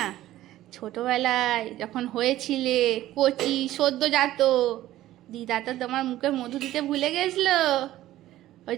না, ছোটবেলায় যখন হয়েছিলে কচি সদ্যজাত, দিদা তো তোমার মুখে মধু দিতে ভুলে গেছিলো। ওই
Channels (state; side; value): quieter; left; 14.6 dB